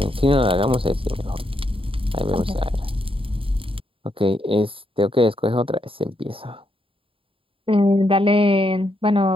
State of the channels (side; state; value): left; late; 0.26 ms